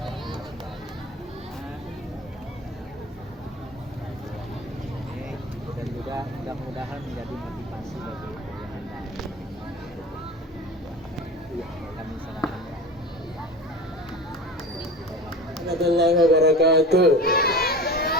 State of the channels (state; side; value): normal; both; correlation 0.33